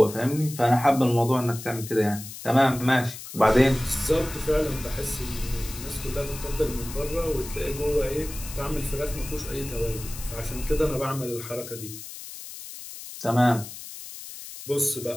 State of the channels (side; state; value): left; noise; hiss, 12 dB below the sound